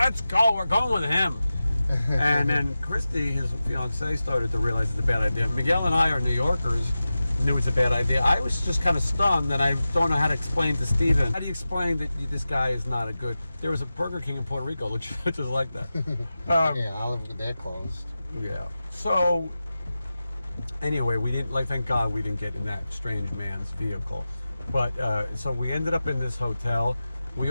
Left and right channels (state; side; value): inverted; both; correlation -0.94